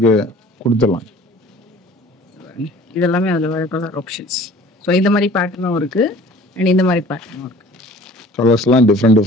கொடுத்துடலாம். இதெல்லாமே அதுல வர கலர் ஆப்ஷன்ஸ். ஸோ இந்த மாதிரி பேட்டர்னும் இருக்கு அண்ட் இந்த மாதிரி பேட்டர்னும் இருக்கு. கலர்ஸ்லாம்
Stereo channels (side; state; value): both; normal; correlation 0.48